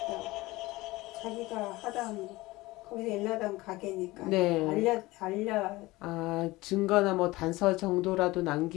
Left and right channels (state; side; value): quieter; right; 20.0 dB